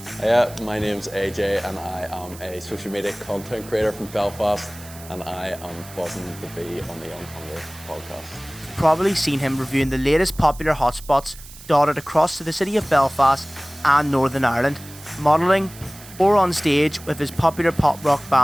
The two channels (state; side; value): noise; right; hiss, 18 dB below the sound